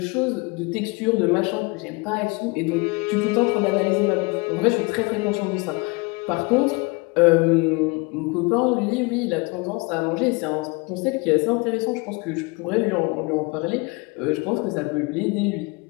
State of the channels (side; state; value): right; quieter; 27.2 dB